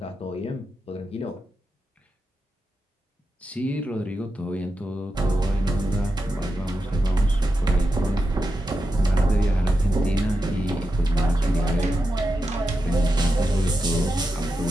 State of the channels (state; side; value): normal; both; correlation 0.89